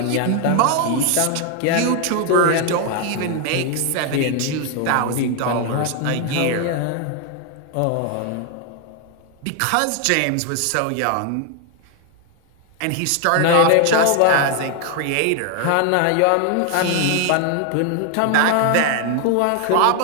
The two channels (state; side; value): different; both; correlation 0.01